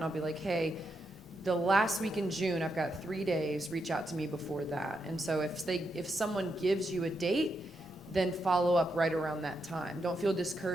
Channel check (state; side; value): normal; both; correlation 0.83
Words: I'll be like, hey, the last week in June, I've got 3 days, reach out to me before that. And so if someone gives you a date, then follow up right around that time. Don't feel